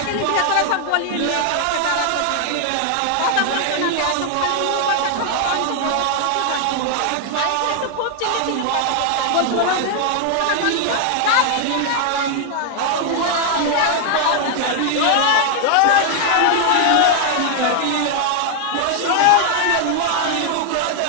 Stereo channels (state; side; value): different; both; correlation 0.00